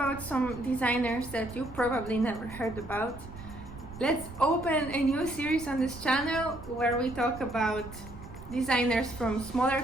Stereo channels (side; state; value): right; noise; rumble, 15 dB below the sound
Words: some designers that you probably never heard about. Let's open a new series on this channel where we talk about designers from smaller